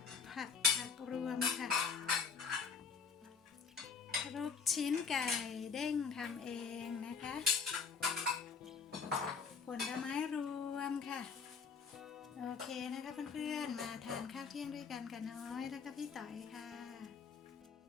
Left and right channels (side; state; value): right; quieter; 5.6 dB